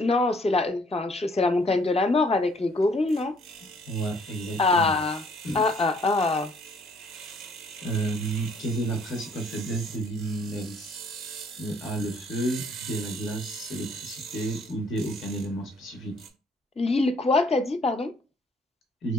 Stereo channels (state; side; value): normal; both; correlation 0.62